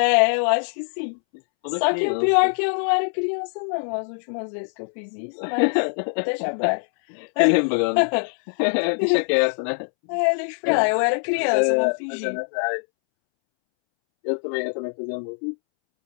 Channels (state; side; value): silent; right; 64 dB below the other